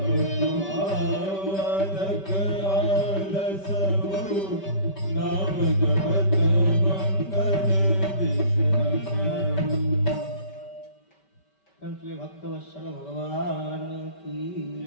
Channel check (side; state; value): right; late; 5.2 ms